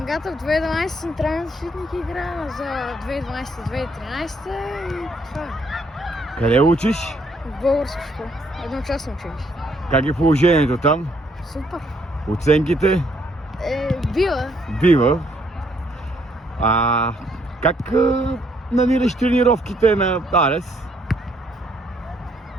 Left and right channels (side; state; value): both; normal; correlation 0.69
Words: Гатев, 2012 централен защитник играя за 2012-2013 и това е. Къде учиш? В българска школа. Едночасно училище. Как е положението там? Супер. Оценките? Била. Бива. Как намираш тренировките на Арес?